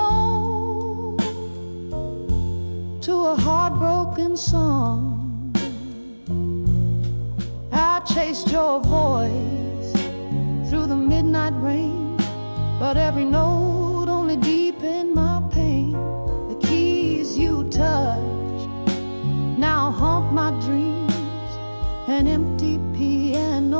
to a heartbroken song. I chased your voice through the midnight rain, but every note only deepened my pain. The keys you touched now haunt my dreams. An empty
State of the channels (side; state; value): both; inverted; correlation -1.00